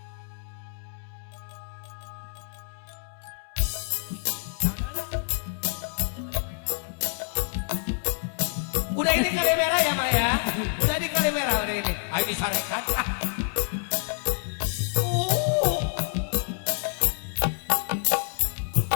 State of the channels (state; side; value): silent; right; 60 dB below the other